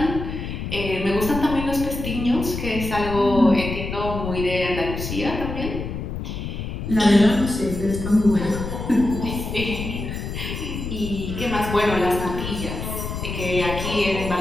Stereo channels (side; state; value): left; noise; rumble, 6 dB below the sound